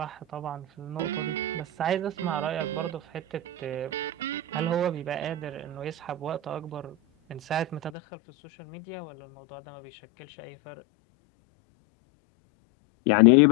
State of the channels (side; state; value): right; drops out; at 7.9 s